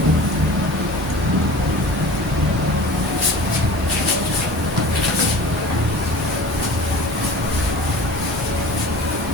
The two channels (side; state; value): both; normal; correlation 0.39